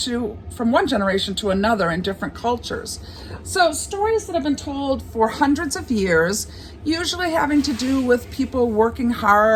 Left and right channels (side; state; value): both; identical; correlation 1.00